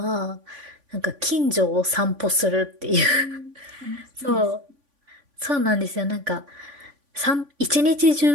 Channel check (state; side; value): late; left; 3.5 ms